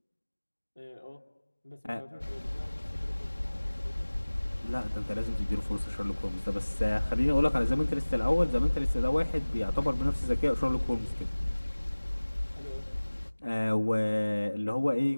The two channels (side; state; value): both; inverted; correlation -1.00